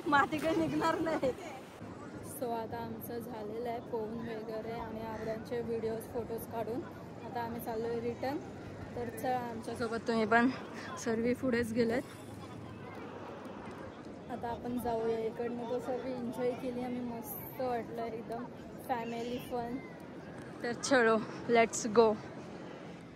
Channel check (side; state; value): both; identical; correlation 1.00